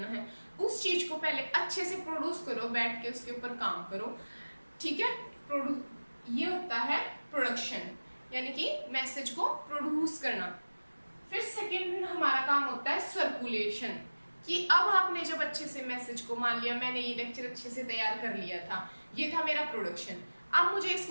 है, उस चीज को पहले अच्छे से प्रोड्यूस करो, बैठ के उसके ऊपर काम करो, ठीक है। ये होता है प्रोडक्शन, यानी कि मैसेज को प्रोड्यूस करना। फिर सेकेंड हमारा काम होता है सर्कुलेशन, कि अब आपने जब अच्छे से मैसेज को, मान लिया मैंने ये लेक्चर अच्छे से तैयार कर लिया था, ये था मेरा प्रोडक्शन, अब मुझे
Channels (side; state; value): both; inverted; correlation -1.00